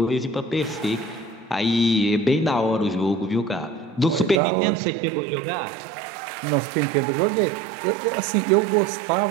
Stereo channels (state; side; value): drops out; left; at 4.4 s